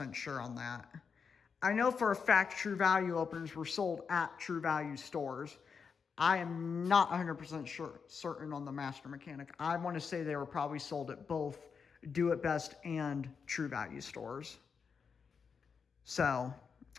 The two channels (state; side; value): quieter; right; 5.9 dB